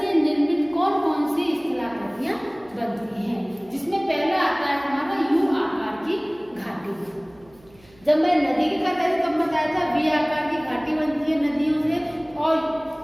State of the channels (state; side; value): noise; right; hum, 28 dB below the sound